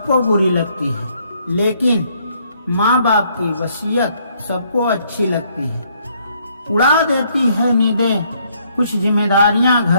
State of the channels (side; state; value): both; inverted; correlation -0.68